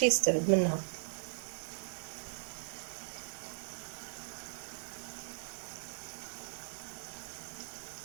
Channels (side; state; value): left; silent; digital silence